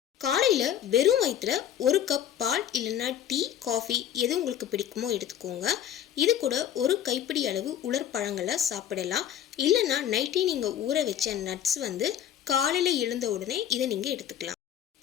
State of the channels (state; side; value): quieter; right; 10.2 dB